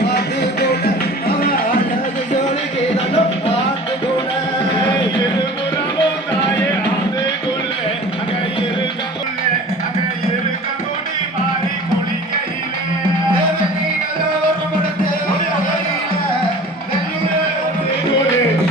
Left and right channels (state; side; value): normal; both; correlation 0.42